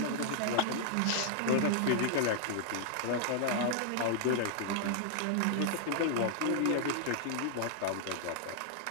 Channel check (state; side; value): different; both; correlation -0.01